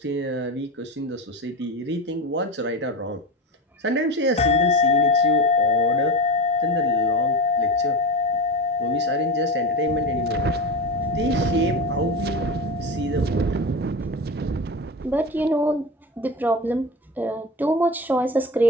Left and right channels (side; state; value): both; normal; correlation 0.24